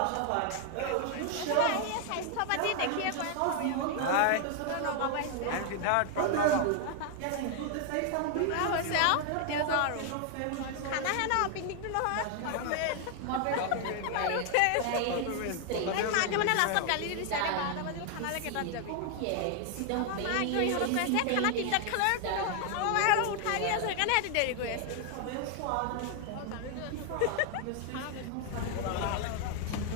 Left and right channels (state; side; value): different; both; correlation 0.00